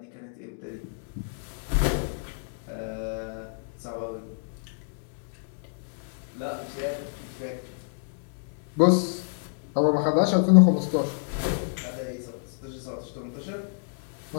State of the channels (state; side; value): silent; right; digital silence